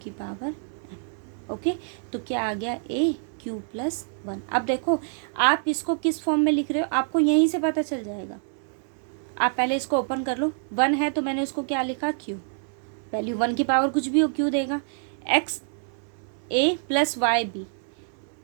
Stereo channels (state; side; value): silent; left; 61 dB below the other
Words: पावर m। ओके, तो क्या आ गया, a क्यू प्लस 1। अब देखो आप इसको किस फॉर्म में लिख रहे हो, आपको यहीं से पता चल जाएगा। आप पहले इसको ओपन कर लो, 1 है तो मैंने उसको क्या लिखा, क्यू, वैल्यू 1 की पावर कुछ भी हो क्यू देगा, एक्स ए प्लस वाई बी,